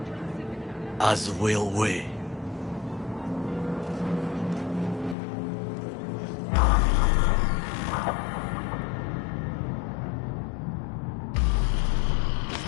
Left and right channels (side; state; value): right; drops out; at 5.2 s